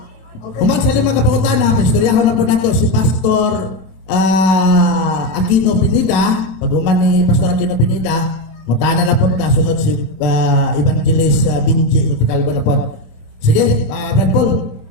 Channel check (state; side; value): late; right; 26 ms